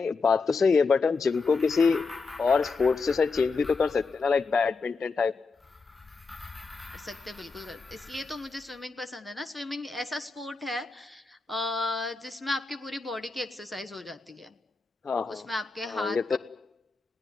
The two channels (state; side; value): quieter; right; 4.4 dB